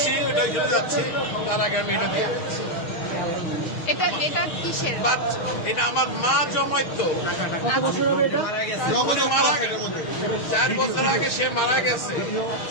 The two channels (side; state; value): right; late; 6.4 ms